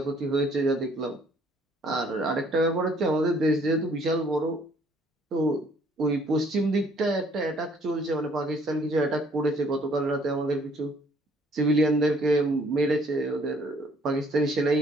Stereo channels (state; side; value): normal; both; correlation 0.62